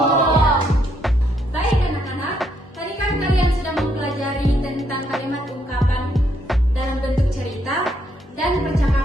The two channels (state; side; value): normal; both; correlation 0.74